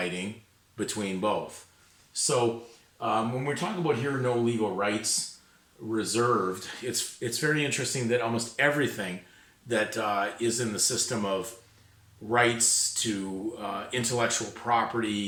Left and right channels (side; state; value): both; identical; correlation 1.00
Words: between both. So when we're talking about here, no legal rights reserved, it's very interesting that almost everything that is in the system of rights to intellectual